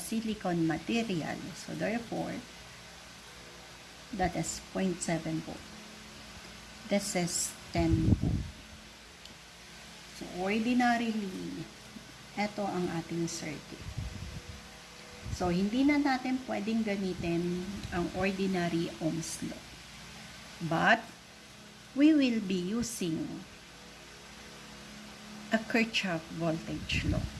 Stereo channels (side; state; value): both; identical; correlation 1.00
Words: material, so therefore, that is 0.7 volt. This is 10 volt. So, ordinarily, ito ang ating circuit. So, hindi na natin pwedeng gamitin ang ordinary Ohm's law. But, we will be using a Kirchhoff voltage law.